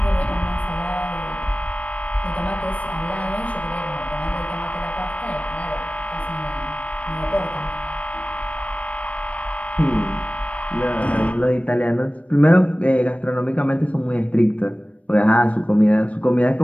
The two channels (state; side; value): late; right; 0.066 ms